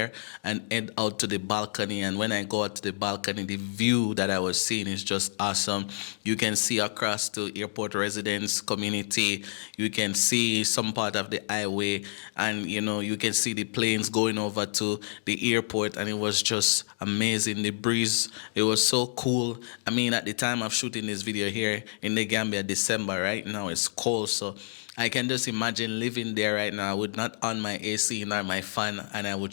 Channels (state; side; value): silent; right; digital silence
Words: and head out to the balcony. And when I go out to the balcony, the view that I was seeing is just awesome. You can see across to airport residence community. You can see some part of the highway, and, you know, you can see the planes going over to the airport. And it was just amazing. The breeze, it was so cool. I mean, at the time of shooting this video here in the Gambia, December, right now it's cold, so I can just imagine living there right now. I would not on my AC nor my fan, and I would